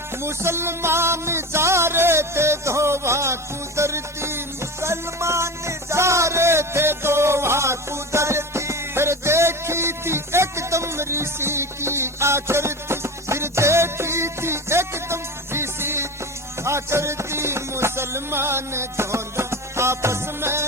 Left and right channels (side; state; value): both; normal; correlation 0.28